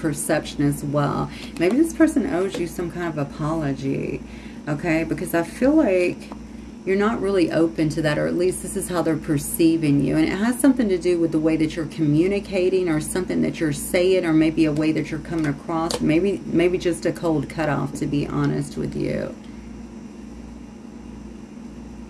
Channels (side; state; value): both; identical; correlation 1.00